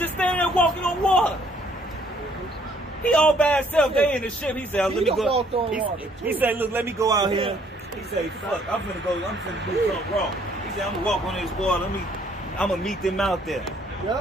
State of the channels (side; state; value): both; normal; correlation 0.63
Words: standing there walking on water. He all by himself. They in the ship. He said, let me go. He said, look, let me go out here. He said, fuck, I'm finna do something wrong. He said, I'm gonna walk on this water. I'm gonna meet them out there.